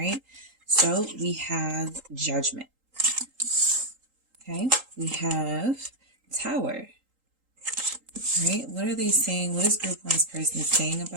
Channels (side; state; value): left; late; 3.8 ms